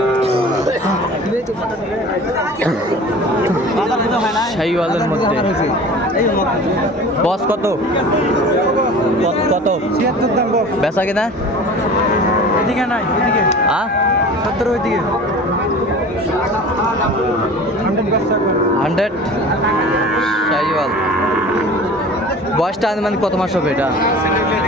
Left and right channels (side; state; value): both; normal; correlation 0.40